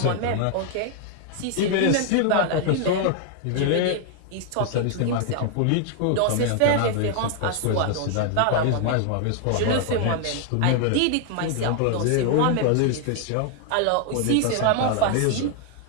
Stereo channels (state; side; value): different; both; correlation 0.00